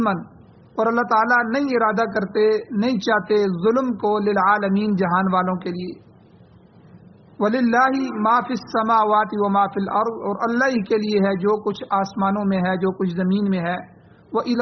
اور اللہ تعالیٰ نہیں ارادہ کرتے نہیں چاہتے ظلم کو، للعالمین جہان والوں کے لیے۔ وَلِلَّهِ مَا فِي السَّمَاوَاتِ وَمَا فِي الْأَرْضِ اور اللہ ہی کے لیے ہے جو کچھ آسمانوں میں ہے جو کچھ زمین میں ہے۔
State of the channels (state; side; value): identical; both; correlation 1.00